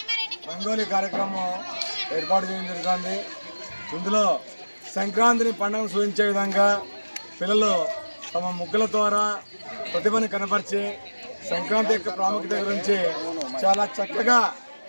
రంగోలీ కార్యక్రమం ఏర్పాటు చేయడం జరుగుతుంది. ఇందులో సంక్రాంతిని పండుగను సూచించే విధంగా పిల్లలు తమ ముగ్గుల ద్వారా ప్రతిభని కనపరిచి సంక్రాంతి యొక్క ప్రాముఖ్యత గురించి చాలా చక్కగా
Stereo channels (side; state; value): both; inverted; correlation -1.00